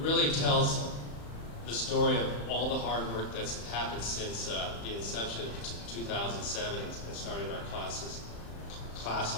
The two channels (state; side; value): late; right; 35 ms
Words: really tells the story of all the hard work that's happened since the inception of 2007 and starting our class